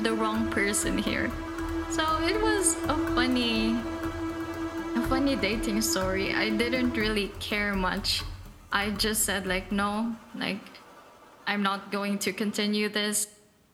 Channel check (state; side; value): identical; both; correlation 1.00